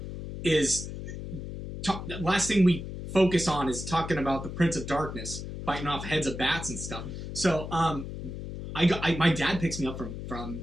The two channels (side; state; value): left; noise; hum, 8 dB below the sound